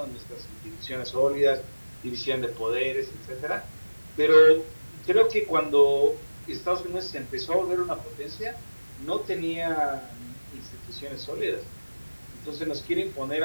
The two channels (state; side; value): inverted; both; correlation -1.00